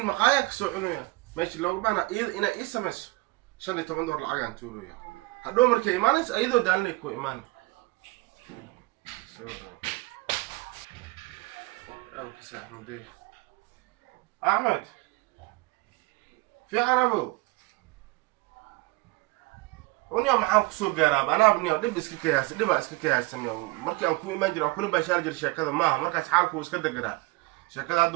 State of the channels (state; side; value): quieter; left; 22.8 dB